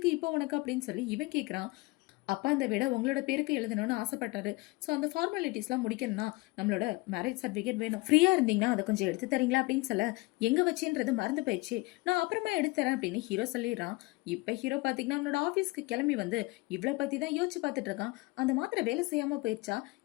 இப்போ உனக்கு அப்படின்னு சொல்லி இவன் கேட்கறான். அப்பா இந்த விட உங்களோட பேருக்கு எழுதணும்னு ஆசைப்பட்டாரு. ஸோ அந்த ஃபார்மாலிட்டிஸ்லாம் முடிக்கணும்னா நம்மளோட மேரேஜ் சர்டிஃபிகேட் வேணும், ஃப்ரீயா இருந்தீங்கன்னா அதை கொஞ்சம் எடுத்து தரீங்களா அப்படின்னு சொல்ல, எங்க வச்சுன்றது மறந்து போயிடுச்சு, நான் அப்புறமா எடுத்து தரேன் அப்படின்னு ஹீரோ சொல்லிடுறான். இப்ப ஹீரோ பாத்தீங்கன்னா அவனோட ஆஃபீஸ்க்கு கிளம்பி வந்து இவ்வளவு பத்தி தான் யோசிச்சு பார்த்துட்டு இருக்கான். அந்த மாத்திரை வேலை செய்யாம போயிடுச்சா,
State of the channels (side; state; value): right; quieter; 23.2 dB